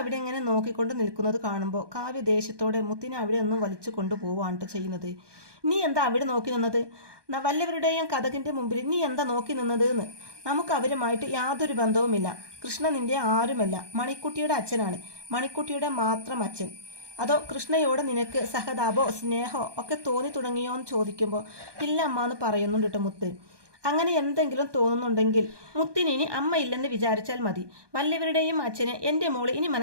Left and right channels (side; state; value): left; late; 1.2 ms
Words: ഇങ്ങനെ നോക്കിക്കൊണ്ട് നിൽക്കുന്നത് കാണുമ്പോൾ കാവ്യ ദേഷ്യത്തോടെ മുത്തിനെ അവിടെ ഒന്നും വലിച്ചു കൊണ്ടുപോവാണ് ചെയ്യുന്നത്. നീ എന്താ അവിടെ നോക്കി നിന്നത്? വല്ലവരുടെയും കഥകിൻ്റെ മുമ്പിൽ നീ എന്താ നോക്കി നിന്നത് എന്ന്? നമുക്ക് അവരുമായിട്ട് യാതൊരു ബന്ധവുമില്ല. കൃഷ്ണ നിന്റെ ആരുമല്ല, മണിക്കുട്ടിയുടെ അച്ഛനാണ്, മണിക്കുട്ടിയുടെ മാത്രം അച്ഛൻ. അതോ കൃഷ്ണയോട് നിനക്ക് സഹതാപോ സ്നേഹമോ ഒക്കെ തോന്നി തുടങ്ങിയോ എന്ന് ചോദിക്കുമ്പോൾ ഇല്ല അമ്മ എന്ന് പറയുന്നുണ്ട് കേട്ടോ മുത്ത്. അങ്ങനെ എന്തെങ്കിലും തോന്നുന്നുണ്ടെങ്കിൽ മുത്തിന് ഇനി അമ്മ ഇല്ലെന്ന് വിചാരിച്ചാൽ മതി. വല്ലവരുടെയും അച്ഛനെ എൻ്റെ മോള് ഇനി